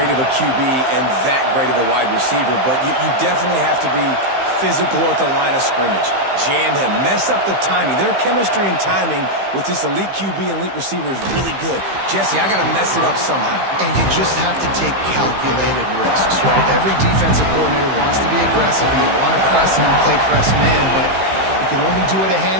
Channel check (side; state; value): left; late; 15 ms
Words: of a QB and that great of a wide receiver, but you definitely have to be physical at the line of scrimmage. Jam him, mess up the timing. Their chemistry and timing with this elite QB and elite receiver is really good. Jesse, I got to mess it up somehow. And you just have to take calculated risks, right? Every defensive coordinator wants to be aggressive and you want to press him and play press man, but you can only do it a